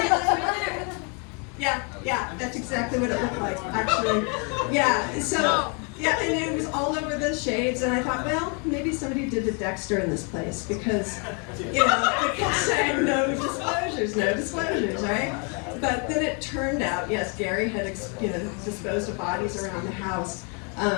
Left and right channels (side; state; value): right; quieter; 36.1 dB